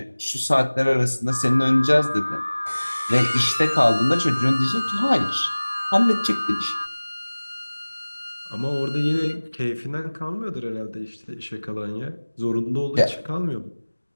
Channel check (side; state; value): both; inverted; correlation -1.00